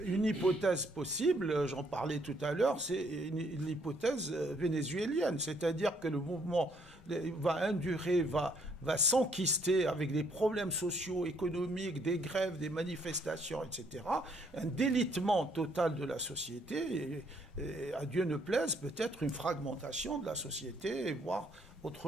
une hypothèse possible, j'en parlais tout à l'heure, c'est l'hypothèse vénézuélienne, c'est-à-dire que le mouvement va endurer, va s'enquister avec des problèmes sociaux, économiques, des grèves, des manifestations, etc. Un délitement total de la société, et à Dieu ne plaise, peut-être une fragmentation de la société, voire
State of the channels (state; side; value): normal; both; correlation 0.68